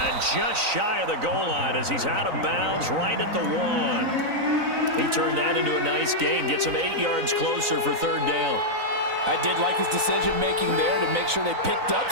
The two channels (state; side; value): late; left; 3.9 ms